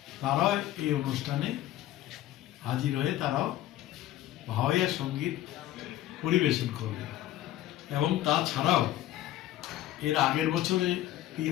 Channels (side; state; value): right; quieter; 13.8 dB